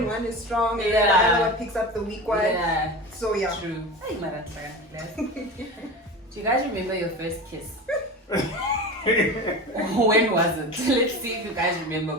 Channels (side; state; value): both; normal; correlation 0.30